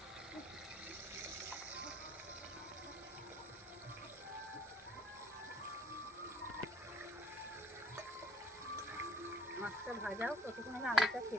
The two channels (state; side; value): normal; both; correlation 0.60